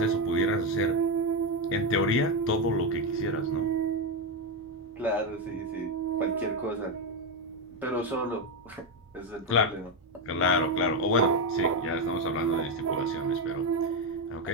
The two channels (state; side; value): normal; both; correlation 0.07